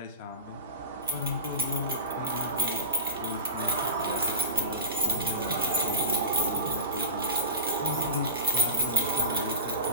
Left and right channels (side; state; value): both; inverted; correlation -0.33